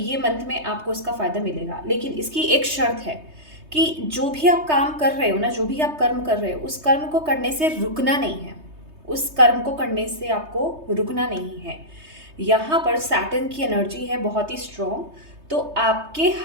मंथ में आपको उसका फ़ायदा मिलेगा, लेकिन इसकी एक शर्त है कि जो भी आप काम कर रहे हो ना, जो भी आप कर्म कर रहे हो, उस कर्म को करने से रुकना नहीं है। उस कर्म को करने से आपको रुकना नहीं है। यहाँ पर सैटर्न की एनर्जी है बहुत ही स्ट्रॉन्ग। तो आपके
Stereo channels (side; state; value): left; late; 3.2 ms